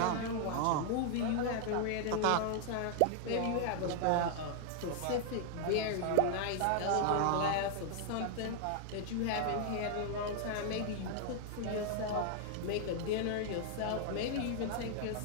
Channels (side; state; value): both; different; correlation 0.00